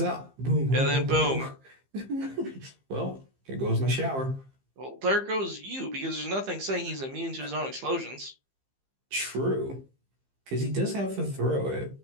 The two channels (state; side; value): late; left; 15 ms